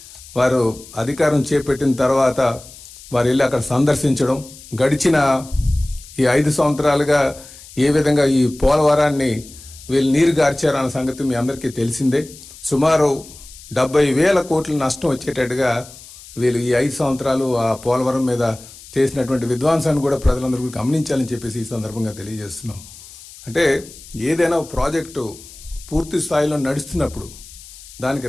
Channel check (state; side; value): noise; left; hiss, 19 dB below the sound